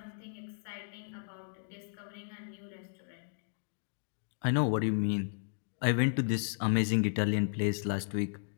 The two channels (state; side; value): silent; right; digital silence